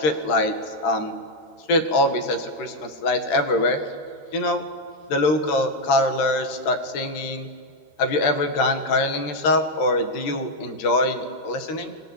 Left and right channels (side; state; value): right; late; 13 ms